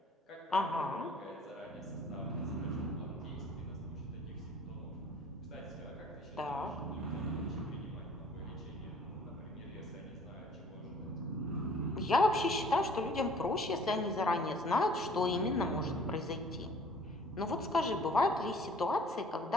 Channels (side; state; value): both; normal; correlation 0.53